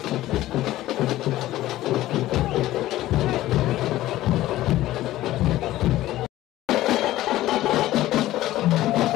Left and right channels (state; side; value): quieter; right; 15.3 dB